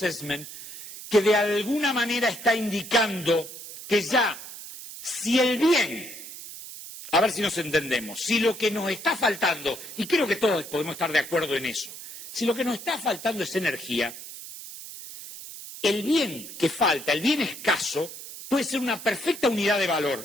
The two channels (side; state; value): right; noise; hiss, 12 dB below the sound